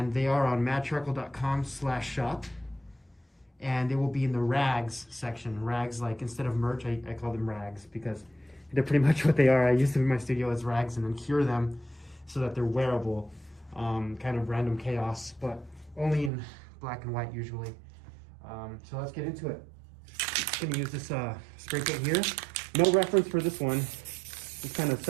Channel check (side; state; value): left; drops out; at 16.3 s